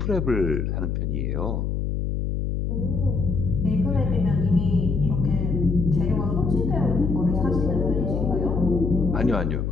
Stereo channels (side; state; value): left; noise; hum, 1 dB below the sound